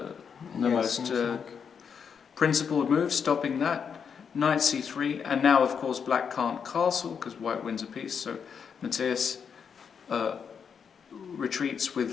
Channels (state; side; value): quieter; right; 6.8 dB